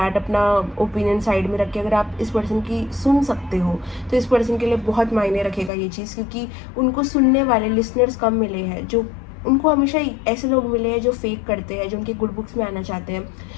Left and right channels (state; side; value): drops out; right; at 5.7 s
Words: अपना ओपिनियन साइड में रख के अगर आप इस पर्सन की सुन सकते हो, तो इस पर्सन के लिए बहुत मायने रखेगा ये चीज़, क्योंकि उनको सुनने वाले लिसनर्स कम मिले हैं। जो उनको हमेशा ऐसे लोग मिले हैं जो फेक करते हैं, जो उनके गुड बुक्स में आना चाहते हैं।